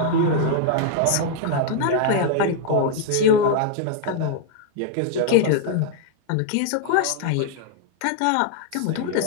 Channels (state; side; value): different; both; correlation 0.00